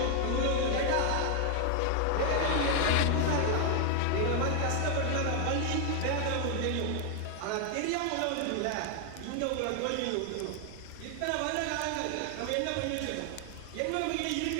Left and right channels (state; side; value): different; both; correlation 0.00